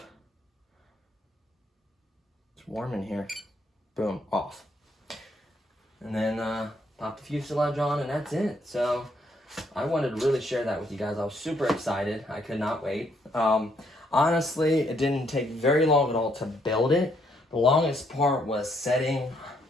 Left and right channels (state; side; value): normal; both; correlation 0.71